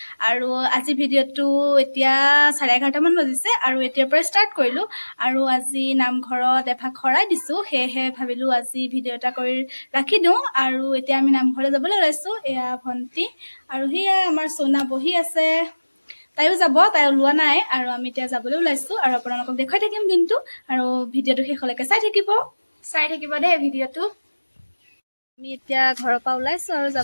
আৰু আজি ভিডিঅ'টো এতিয়া 11:30মান বাজিছে আৰু এতিয়াৰ পৰা ষ্টাৰ্ট কৰিলোঁ। আৰু আজি নামঘৰত এভাগ শৰাই দিছোঁ, সেয়েহে ভাবিলোঁ আজি ভিডিঅ' এটা কৰি ৰাখি দিওঁ। আৰু এতিয়া আমি নামঘৰলৈ যাবলৈ ওলাইছোঁ। এয়া ভণ্টি আৰু সেয়া আমাৰ চৌনা বহি আছে, তাইও যাব, তাই ওলোৱা নাই। আৰু আমি এতিয়া যাবলৈ ওলাইছোঁ আৰু আপোনালোকক দেখুৱাই থাকিম দিনটো। আৰু ভিডিঅ'টো শেষলৈকে চাই থাকিব দেই ভিডিঅ'টো। আমি এতিয়া ঘৰৰ পৰা ওলাইছোঁ আৰু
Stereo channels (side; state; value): both; inverted; correlation -1.00